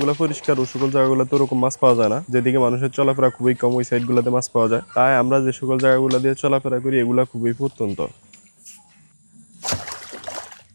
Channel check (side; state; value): both; inverted; correlation -1.00